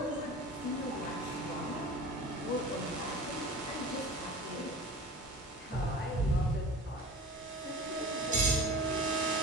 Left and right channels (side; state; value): both; normal; correlation 0.37